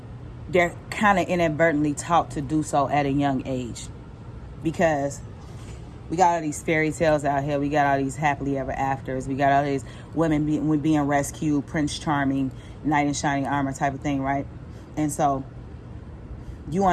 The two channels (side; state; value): both; identical; correlation 1.00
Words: they're kind of inadvertently taught to do so at a young age. Because we got all these fairy tales out here. We got all these happily ever afters. We got all these women being rescued, Prince Charming, knight in shining armor type of thing, right? And so you